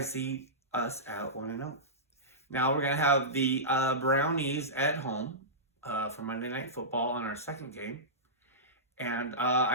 see us at 1-0. Now we're gonna have the Brownies at home for Monday Night Football on our second game, and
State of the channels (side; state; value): both; normal; correlation -0.16